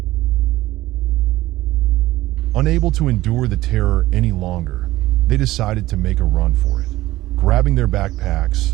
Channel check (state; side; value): quieter; left; 16.7 dB